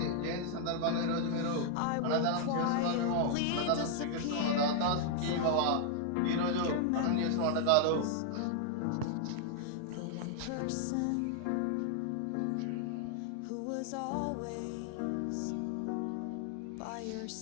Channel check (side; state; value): both; different; correlation 0.00